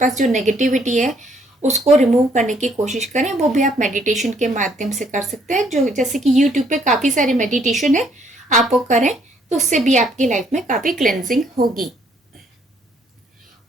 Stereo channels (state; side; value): normal; both; correlation 0.66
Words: जो नेगेटिविटी है उसको रिमूव करने की कोशिश करें। वो भी आप मेडिटेशन के माध्यम से कर सकते हैं, जो जैसे कि यूट्यूब पे काफ़ी सारे मेडिटेशन है, आप वो करें तो उससे भी आपकी लाइफ में काफ़ी क्लेंजिंग होगी।